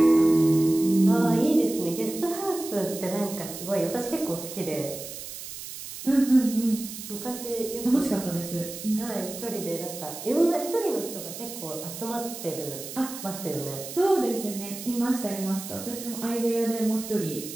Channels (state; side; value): noise; right; hiss, 10 dB below the sound